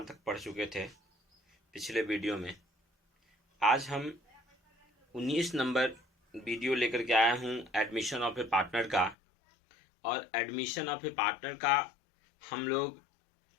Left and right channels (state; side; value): drops out; right; at 9.2 s